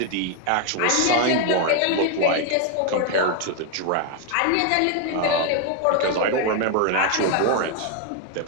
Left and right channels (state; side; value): different; both; correlation 0.01